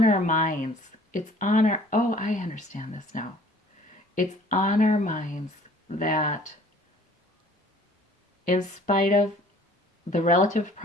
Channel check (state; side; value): normal; both; correlation 0.53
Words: our minds. It's on our... Oh, I understand this now. It's on our minds that in spite of the relative